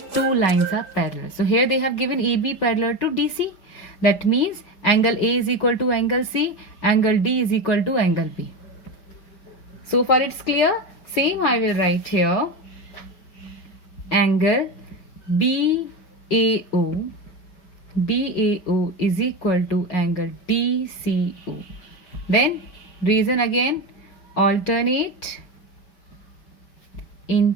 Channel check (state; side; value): late; right; 5.1 ms